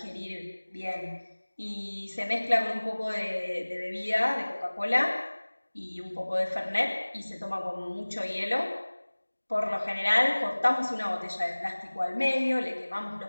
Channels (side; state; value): both; inverted; correlation -1.00